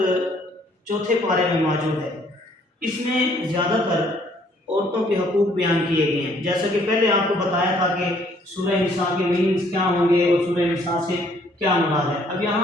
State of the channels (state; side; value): normal; both; correlation 0.63